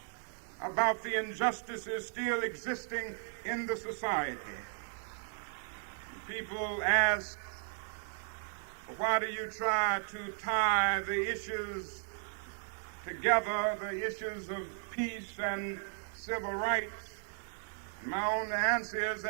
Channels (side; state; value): left; silent; digital silence